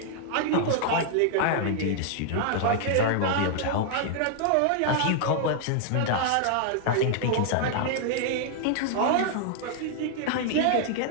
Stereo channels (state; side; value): different; both; correlation 0.00